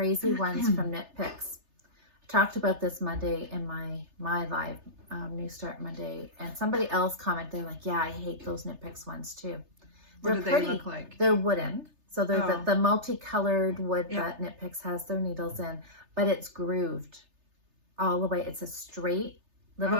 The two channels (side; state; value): left; late; 3.3 ms